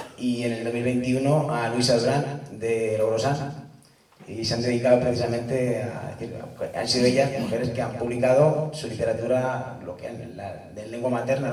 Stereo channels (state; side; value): identical; both; correlation 1.00